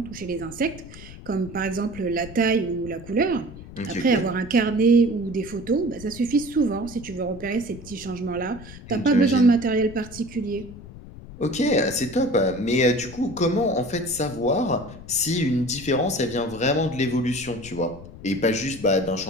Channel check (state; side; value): noise; left; rumble, 16 dB below the sound